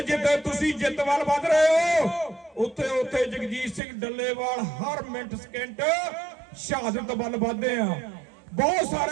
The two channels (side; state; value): left; drops out; at 3.8 s